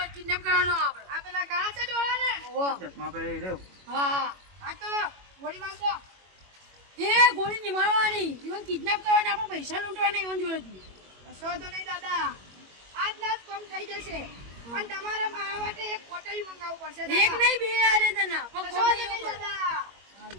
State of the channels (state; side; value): late; left; 21 ms